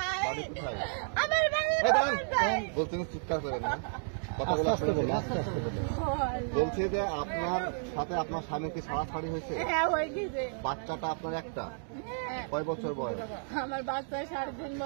আমার বাড়ি বলছেন চিৎকার করেন না, কথাগুলো বলছে যে আপনার সাথে আপনার স্বামী কি ছাড়াছাড়ি হয়েছে? হ্যাঁ হয়ে গেছে। বাচ্চাটা আপনার একটা, কয় বছর বয়স? আমার বাচ্চা 3.5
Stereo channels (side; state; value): left; silent; digital silence